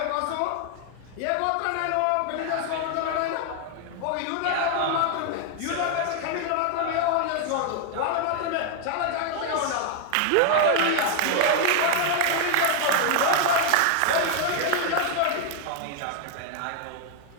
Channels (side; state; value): both; different; correlation 0.00